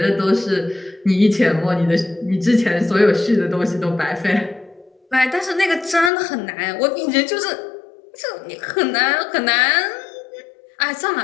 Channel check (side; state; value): right; drops out; at 6.1 s